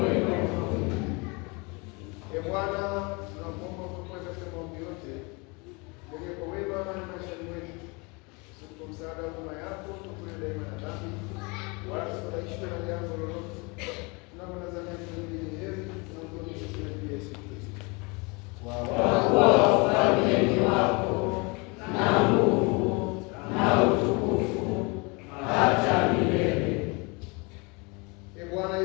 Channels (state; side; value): quieter; right; 28.9 dB